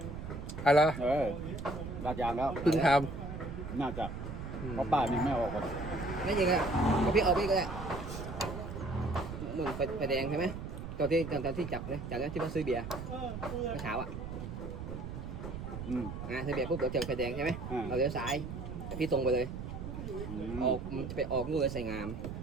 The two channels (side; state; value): right; noise; rumble, 7 dB below the sound